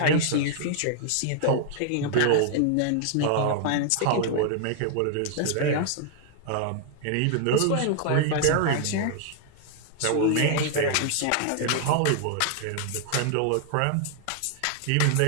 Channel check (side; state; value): both; different; correlation 0.00